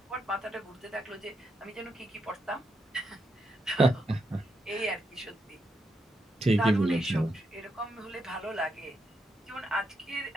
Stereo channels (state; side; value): normal; both; correlation 0.82